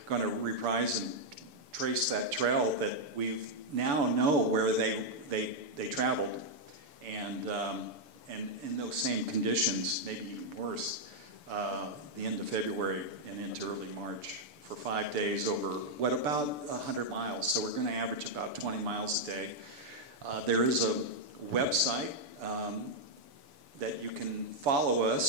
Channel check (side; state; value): left; late; 6.9 ms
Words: going to reprise and trace that trail that we now know where they traveled, and in those same conditions, maybe even worse, the end of February and into early March for 5 days over about 100 miles. So we're going to average about 20 miles a day. There is a website that you can follow